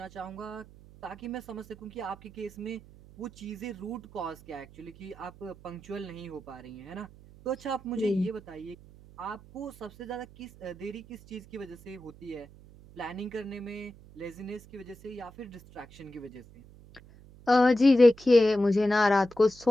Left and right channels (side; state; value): right; noise; hum, 21 dB below the sound